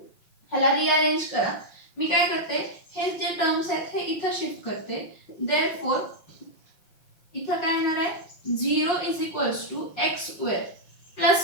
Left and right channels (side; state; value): right; late; 5.7 ms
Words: ह्याला रिअरेंज करा. मी काय करते, हे जे टर्म्स आहेत हे इथं शिफ्ट करते. therefore इथं काय येणार आहे? 0 is equals to x square